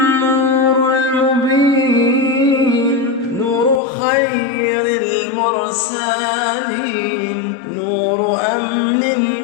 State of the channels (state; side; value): drops out; right; at 3.8 s